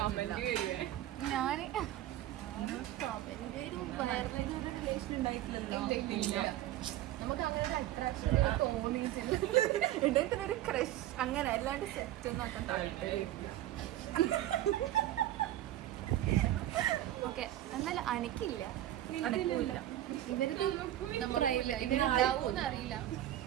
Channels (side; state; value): left; quieter; 13.7 dB